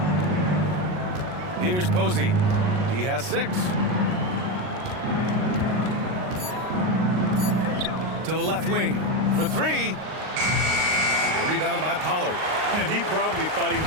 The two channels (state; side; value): late; left; 38 ms